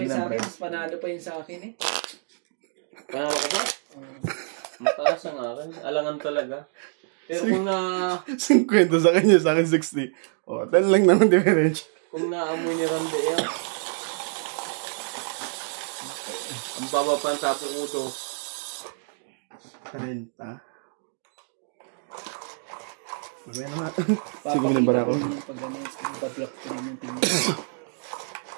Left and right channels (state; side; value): silent; left; 61 dB below the other